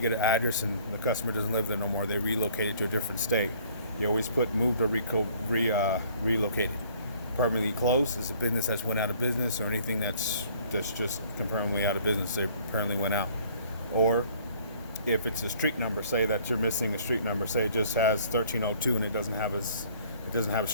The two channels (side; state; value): both; inverted; correlation -0.56